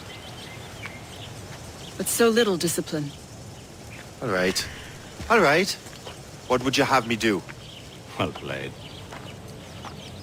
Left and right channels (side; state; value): both; identical; correlation 1.00